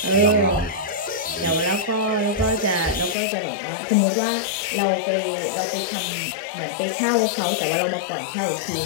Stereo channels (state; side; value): drops out; right; at 3.2 s